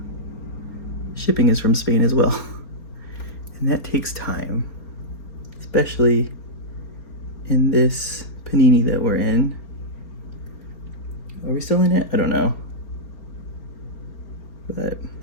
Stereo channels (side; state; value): right; late; 4.4 ms